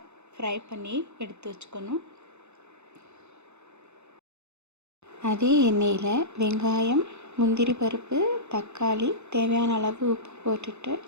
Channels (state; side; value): late; left; 0.82 ms